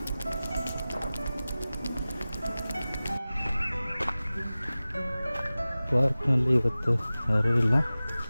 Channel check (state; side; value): inverted; both; correlation -0.97